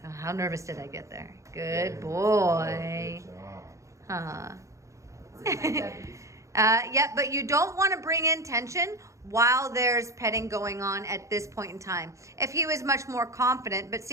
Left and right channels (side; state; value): left; late; 0.15 ms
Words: Oh, how nervous did I get there? Good boy. Huh. Yeah, but you don't want to bring in tension while there's petting going on at this point in time. If he was much more confident, but